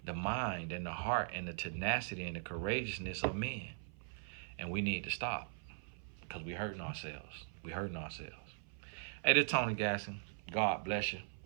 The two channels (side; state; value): left; silent; 51 dB below the other